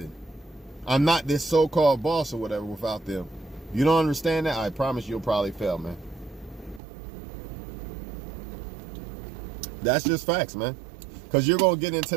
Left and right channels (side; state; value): left; drops out; at 6.8 s